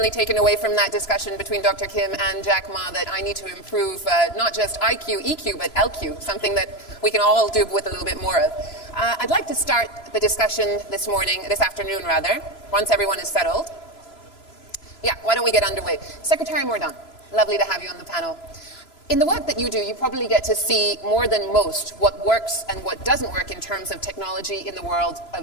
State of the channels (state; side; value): late; right; 3.0 ms